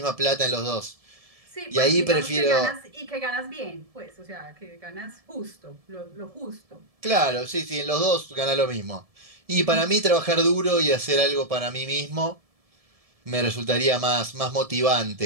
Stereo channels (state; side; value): late; left; 1.7 ms